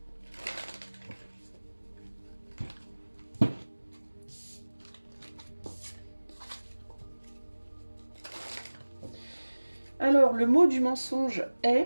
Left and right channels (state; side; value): inverted; both; correlation -1.00